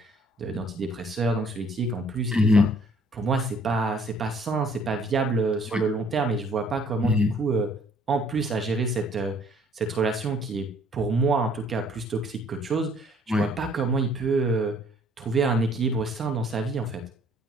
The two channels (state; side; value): normal; both; correlation 0.60